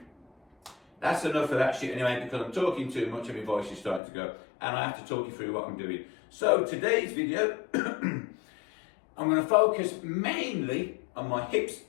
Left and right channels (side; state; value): right; drops out; at 4.0 s